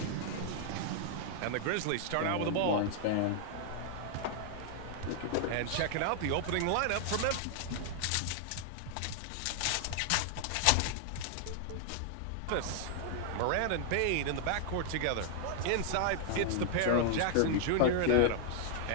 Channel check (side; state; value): both; different; correlation 0.00